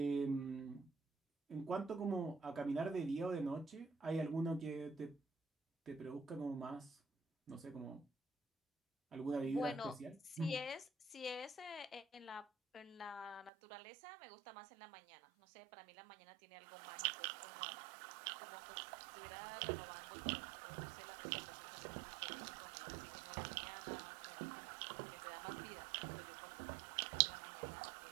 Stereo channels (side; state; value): left; drops out; at 13.5 s